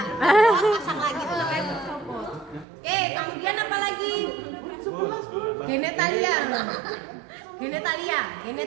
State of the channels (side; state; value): left; drops out; at 2.7 s